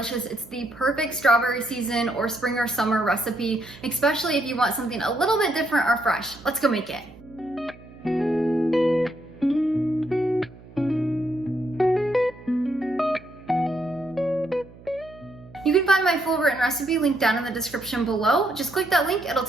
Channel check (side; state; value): right; noise; hum, 21 dB below the sound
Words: it's the perfect strawberry season or spring or summer recipe, especially if you want something a little bit different or fresh. Let's go make it. You can find my full written recipe linked down in the description below. Just click that link, it'll